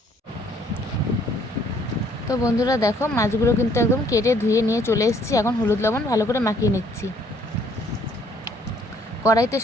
তো বন্ধুরা দেখো, মাছগুলো কিন্তু একদম কেটে ধুয়ে নিয়ে চলে এসেছি। এখন হলুদ লবণ ভালো করে মাখিয়ে নিচ্ছি। কড়াইতে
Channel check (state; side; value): normal; both; correlation 0.63